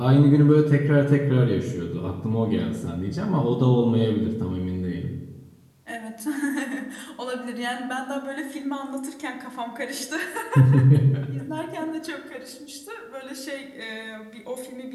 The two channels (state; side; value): identical; both; correlation 1.00